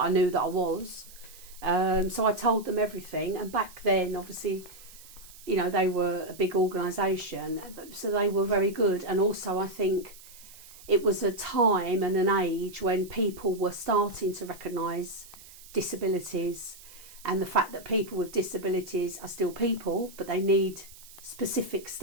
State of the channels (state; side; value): noise; right; hiss, 20 dB below the sound